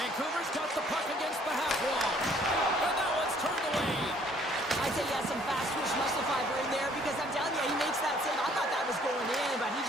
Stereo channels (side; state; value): both; normal; correlation 0.60